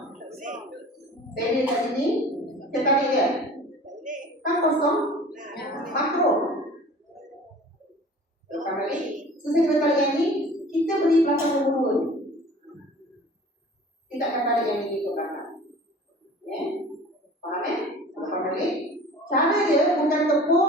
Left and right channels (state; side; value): normal; both; correlation 0.44